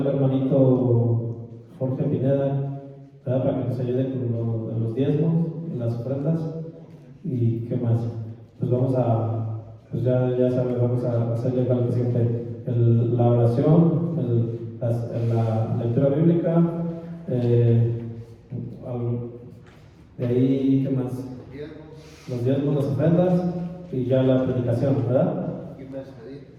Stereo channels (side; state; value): both; identical; correlation 1.00